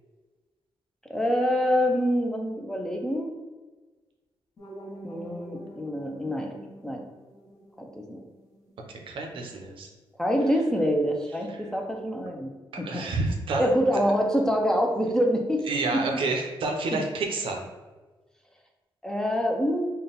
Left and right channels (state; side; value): normal; both; correlation 0.79